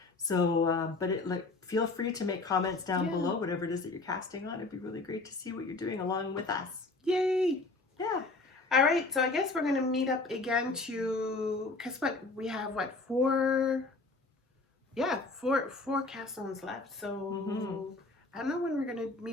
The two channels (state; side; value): quieter; right; 3.4 dB